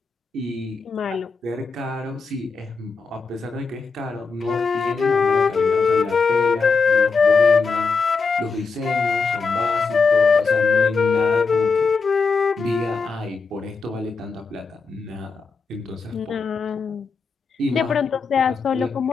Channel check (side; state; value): right; quieter; 4.8 dB